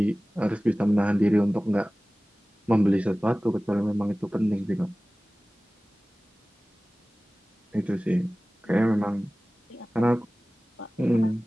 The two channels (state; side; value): normal; both; correlation 0.98